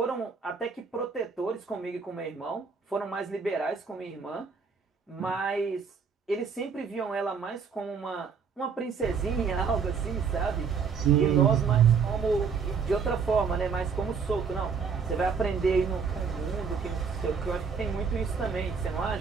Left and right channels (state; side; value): quieter; left; 5.8 dB